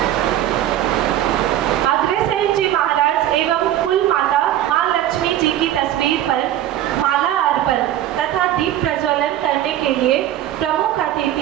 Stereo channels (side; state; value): left; quieter; 12.4 dB